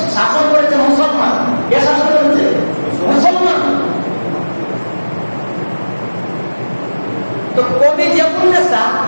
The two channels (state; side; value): inverted; both; correlation -1.00